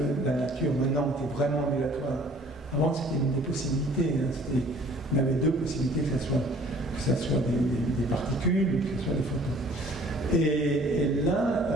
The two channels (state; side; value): normal; both; correlation 0.53